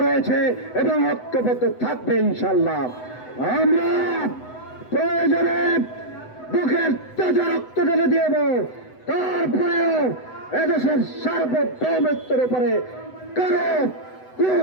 রয়েছে এবং ঐক্যবদ্ধ থাকবে ইনশাল্লাহ। আমরা প্রয়োজনে বুকের তাজা রক্ত ঢেলে দিব, তারপরেও এদেশের সার্বভৌমত্বের উপরে কারো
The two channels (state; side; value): late; right; 8.0 ms